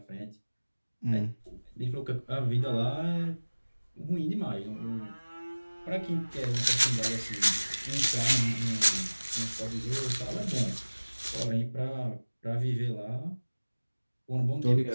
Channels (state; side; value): inverted; both; correlation -1.00